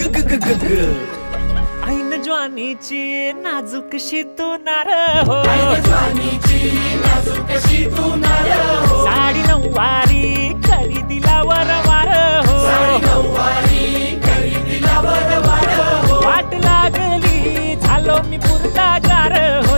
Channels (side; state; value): both; inverted; correlation -1.00